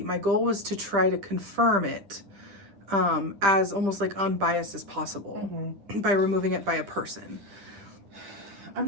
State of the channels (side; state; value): left; late; 10 ms